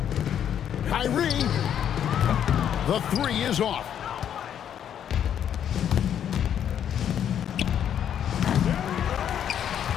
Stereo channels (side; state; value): right; quieter; 9.4 dB